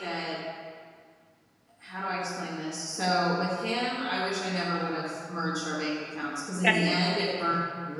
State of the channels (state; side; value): identical; both; correlation 1.00